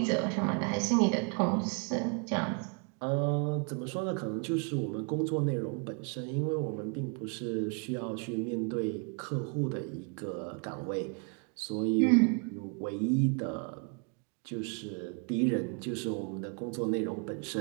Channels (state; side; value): quieter; left; 37.0 dB